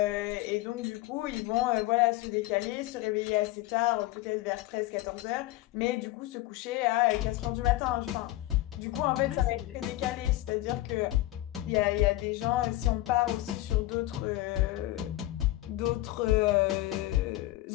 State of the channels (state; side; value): quieter; right; 17.0 dB